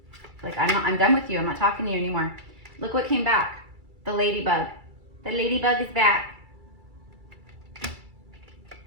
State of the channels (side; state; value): left; late; 2.3 ms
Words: Like, I'm done with you. I'm not talking to you anymore. Look what came back. The ladybug. The ladybug is back.